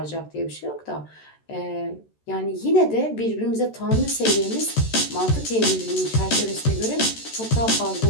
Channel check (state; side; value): late; right; 13 ms